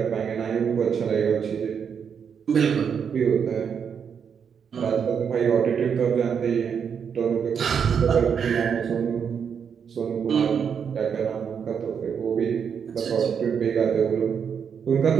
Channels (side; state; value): left; quieter; 7.1 dB